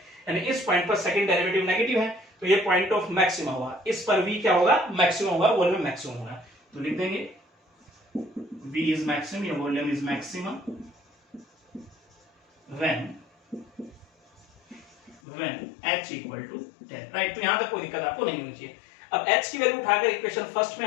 यानी इस पॉइंट पर सेकंड डेरिवेटिव नेगेटिव है, तो ये पॉइंट ऑफ मैक्सिमम हुआ, इस पर v क्या होगा, मैक्सिमम होगा, वॉल्यूम मैक्सिमम होगा, तो लिख देंगे v is maximum, your volume is maximum when h equal to 10, right. तो यहां तक कोई दिक्कत आपको नहीं होनी चाहिए। अब h की वैल्यू उठाकर इक्वेशन फर्स्ट में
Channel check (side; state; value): right; drops out; at 15.2 s